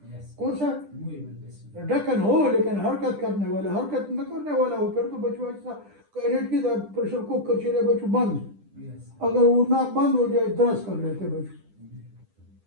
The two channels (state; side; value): late; left; 10 ms